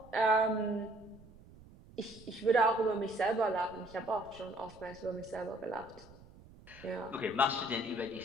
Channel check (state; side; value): noise; right; rumble, 21 dB below the sound